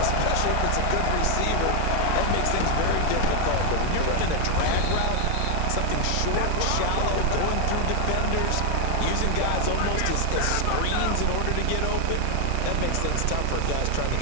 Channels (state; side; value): different; both; correlation 0.00